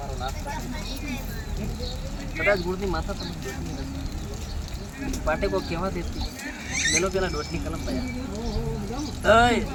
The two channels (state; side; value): identical; both; correlation 1.00